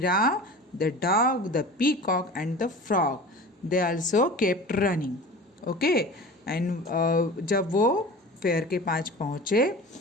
the dog, the peacock and the frog, they also kept running. Okay. And जब वो फेयर के पास पहुँचे,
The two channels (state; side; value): normal; both; correlation 0.37